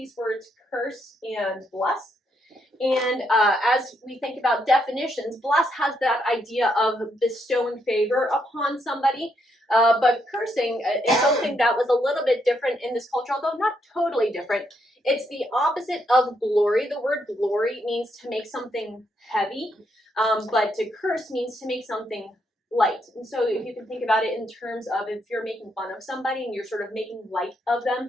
words curse and bless. And as we think about definitions, bless has that idea of bestowing favor upon somebody. But cursing is something that was a little bit different in this culture, although not totally different. It's the opposite of glory. The word glory means to make something heavy, but to curse means to make something light. And so if you can think about it in terms of if you're making fun of somebody and you're sort of making light of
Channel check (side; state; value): both; normal; correlation 0.77